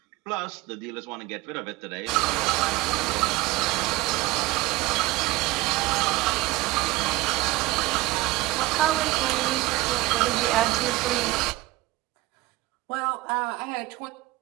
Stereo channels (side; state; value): left; quieter; 19.5 dB